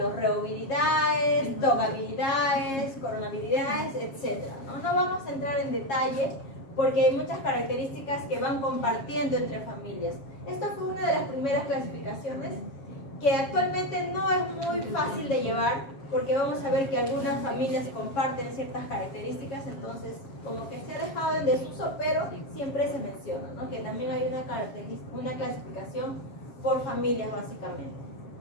reoviridae, tobacviridae, coronaviridae, etc. ¿no? No vamos a entrar en detalle porque hay muchas características que van compartiendo entre familias. Esta fue una de las primeras clasificaciones que actualmente no es muy fácil de llevar porque vamos a ver que algunas familias comparten ciertas características, entonces como que se ha dejado en desuso, pero siempre se menciona, ¿no? Que también hay una clasificación por familias básicamente,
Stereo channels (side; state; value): right; late; 7.4 ms